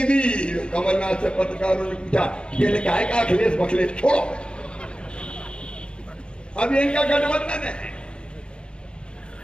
दी। कमलनाथ से पत्रकारों ने पूछा, ये लिखा है कि अखिलेश बखलेश छोड़ो, अब इनका गठबंधन है।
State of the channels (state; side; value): late; right; 0.054 ms